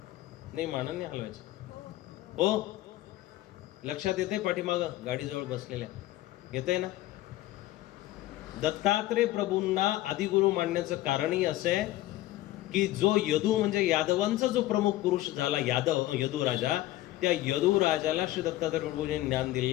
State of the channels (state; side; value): quieter; right; 16.1 dB